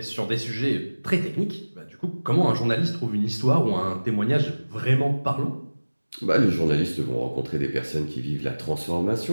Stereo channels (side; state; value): both; inverted; correlation -1.00